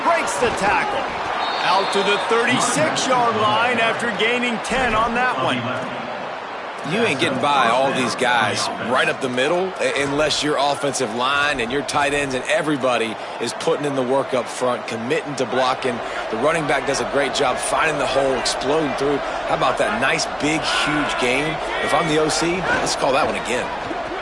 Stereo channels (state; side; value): identical; both; correlation 1.00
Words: Breaks the tackle. Out to the 36-yard line after gaining 10 on that one. You ain't getting by all these guys right up the middle unless your offensive line and your tight ends and everybody is putting in the work up front, committing to blocking. The running back does a great job finding the hole, exploding through. How about that nice, big, huge game? If I'm the OC, let's call that one again.